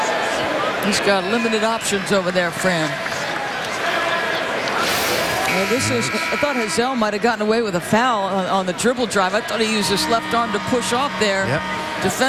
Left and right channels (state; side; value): identical; both; correlation 1.00